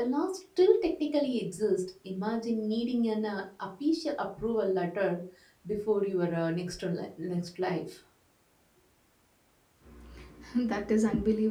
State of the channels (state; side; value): identical; both; correlation 1.00